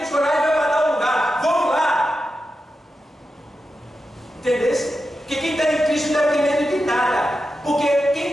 coragem vai para tal lugar. Vamos lá. Entendeu? Porque quem está em Cristo não tem medo de nada. Porque quem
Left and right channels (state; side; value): normal; both; correlation 0.90